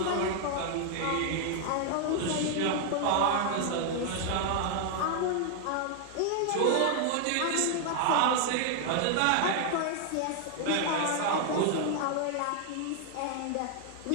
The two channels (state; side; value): different; both; correlation 0.00